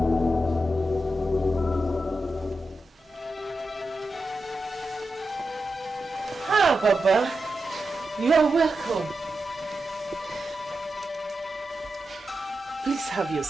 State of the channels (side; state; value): both; normal; correlation 0.89